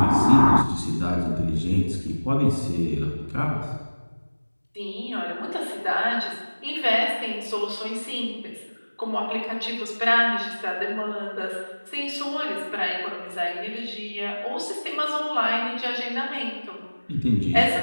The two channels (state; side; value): inverted; both; correlation -1.00